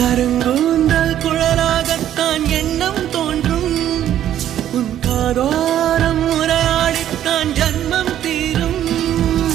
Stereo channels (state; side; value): quieter; left; 11.3 dB